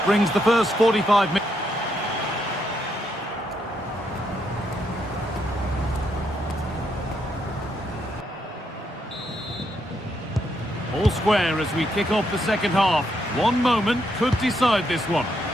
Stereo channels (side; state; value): both; normal; correlation 0.77